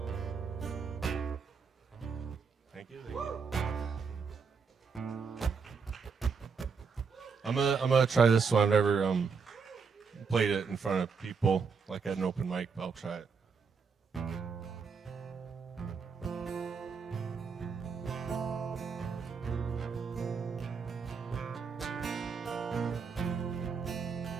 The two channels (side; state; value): left; quieter; 5.6 dB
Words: I'm gonna try this one. I've never played it in front of people like at an open mic, but I'll try it.